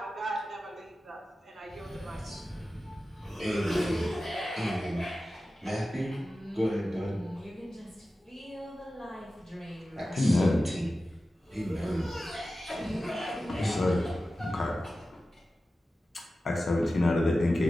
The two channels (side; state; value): both; normal; correlation 0.94